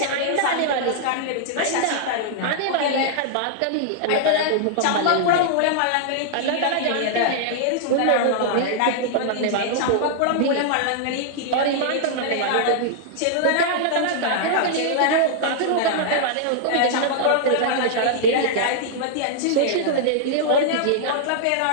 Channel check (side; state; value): both; different; correlation -0.01